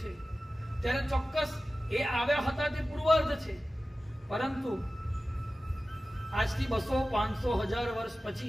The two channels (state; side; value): normal; both; correlation 0.95